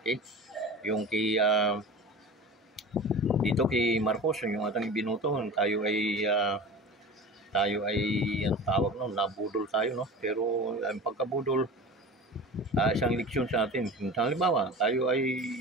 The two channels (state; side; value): normal; both; correlation 0.35